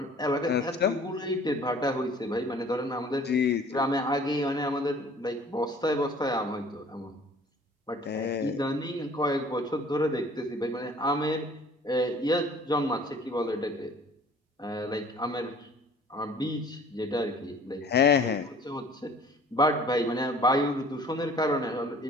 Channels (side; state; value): both; normal; correlation 0.51